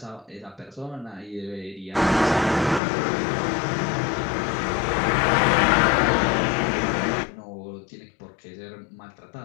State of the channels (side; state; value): right; drops out; at 2.8 s